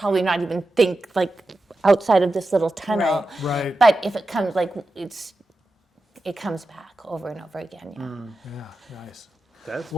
not even think like outside of this little tunnel. Right. But if it comes, it comes back over and over again. Yeah. Yeah. Nice. That's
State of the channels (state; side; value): normal; both; correlation 0.91